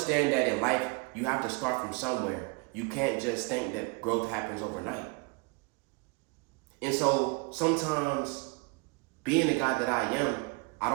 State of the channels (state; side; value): quieter; left; 30.1 dB